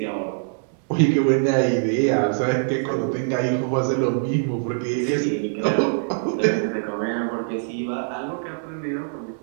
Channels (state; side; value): silent; left; digital silence